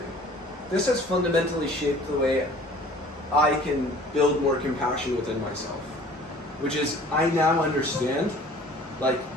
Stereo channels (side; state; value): both; normal; correlation 0.49